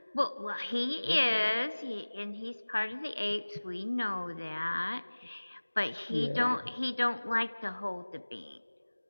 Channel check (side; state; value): both; inverted; correlation -1.00